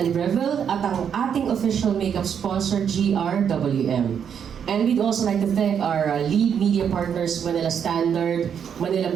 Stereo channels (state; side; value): quieter; left; 7.9 dB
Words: Breville at ang ating official makeup sponsor, GRWM. And we'd also like to thank our lead media partners, Manila Standard, Manila